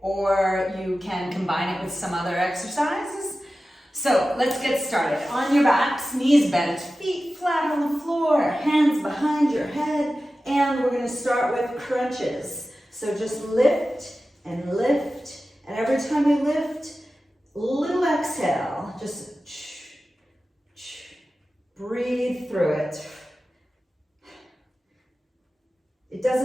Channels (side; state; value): both; normal; correlation 0.94